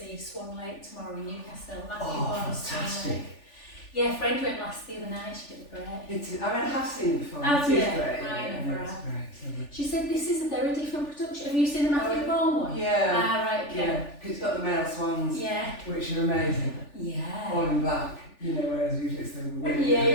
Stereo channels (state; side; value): late; right; 3.4 ms